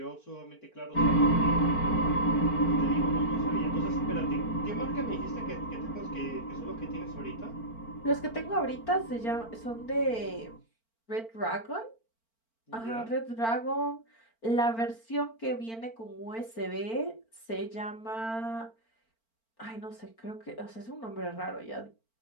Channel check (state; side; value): late; right; 4.4 ms